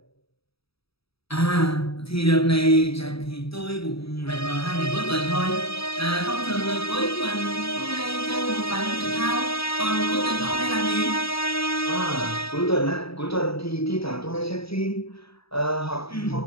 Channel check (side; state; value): right; late; 0.77 ms